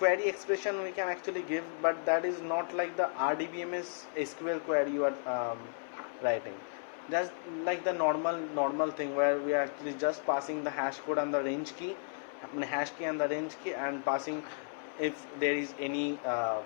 expression we can actually give, but that is not like the RDBMS SQL query you are writing. That's like the normal thing where we are actually just passing the hash code and the range key, hash key and the range key, and passing if there is any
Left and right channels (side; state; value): right; silent; digital silence